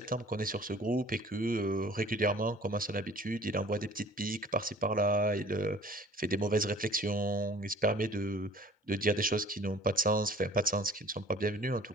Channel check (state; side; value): normal; both; correlation 0.50